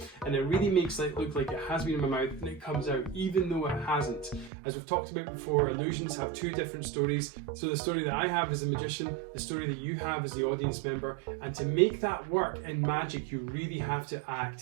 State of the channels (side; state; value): left; drops out; at 4.5 s